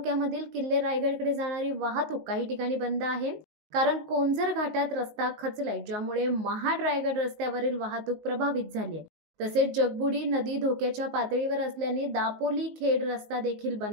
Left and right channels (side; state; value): left; late; 19 ms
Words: किल्ले रायगडकडे जाणारी वाहतूक काही ठिकाणी बंद आहे, कारण कोंझर घाटात रस्ता खचलाय, ज्यामुळे महाड रायगड रस्त्यावरील वाहतूक प्रभावित झाली आहे. तसेच जगबुडी नदी धोक्याच्या पातळीवर असल्याने दापोली खेड रस्ता देखील